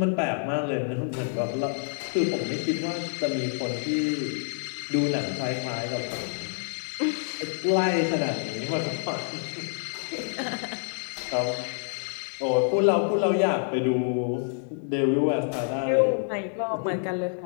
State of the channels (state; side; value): silent; right; digital silence